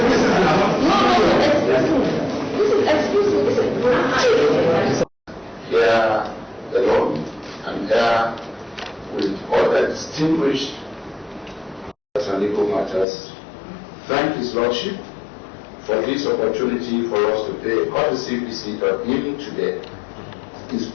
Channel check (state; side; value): drops out; right; at 13.1 s